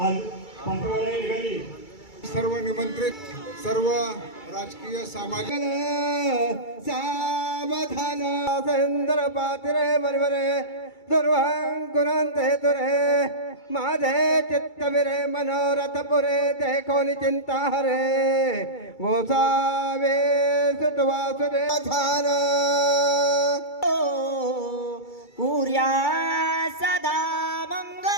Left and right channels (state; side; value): late; right; 2.3 ms